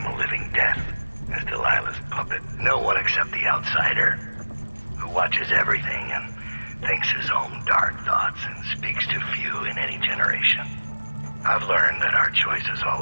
a living death as Delilah's puppet. No one except the outsider, who watches everything and thinks his own dark thoughts and speaks to few in any generation. I've learned that our choices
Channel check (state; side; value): inverted; both; correlation -1.00